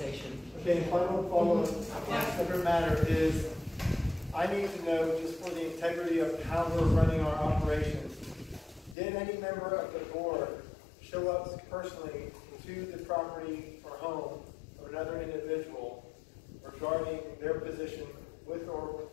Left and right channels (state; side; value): drops out; right; at 9.0 s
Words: Okay, final follow-up on a separate matter is, I need to know, just for the integrity of how we're running our operations, did any member of the board show up personally to the property or home of another individual regarding their position with or